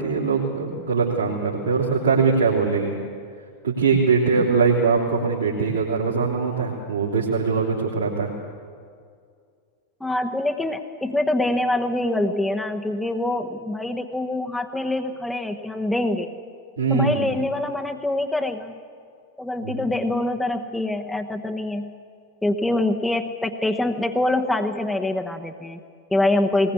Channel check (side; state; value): both; normal; correlation 0.16